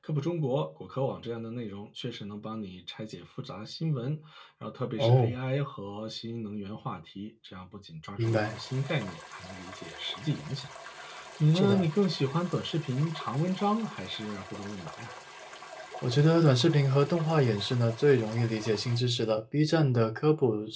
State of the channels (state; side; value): identical; both; correlation 1.00